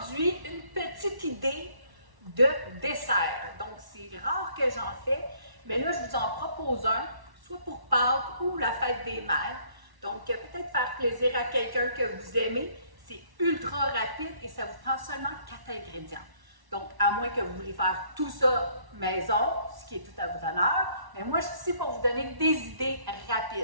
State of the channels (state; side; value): late; left; 1.1 ms